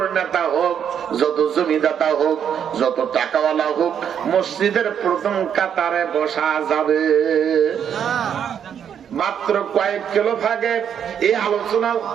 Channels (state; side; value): quieter; left; 8.5 dB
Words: নেতা হোক, যত জমিদাতা হোক, যত টাকাওয়ালা হোক, মসজিদের প্রথম কাতারে বসা যাবে। মাত্র কয়েক কিলো ভাগে এই আলোচনা